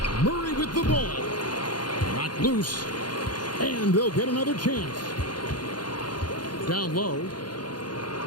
Murray with the ball. Knocked loose. And they'll get another chance. Down low.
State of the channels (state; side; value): late; right; 0.70 ms